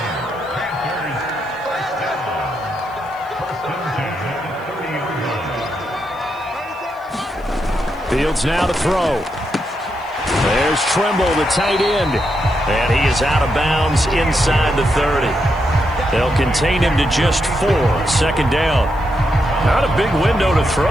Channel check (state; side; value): noise; right; hiss, 29 dB below the sound